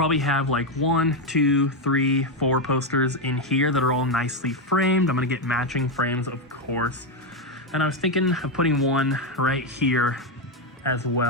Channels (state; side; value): normal; both; correlation 0.06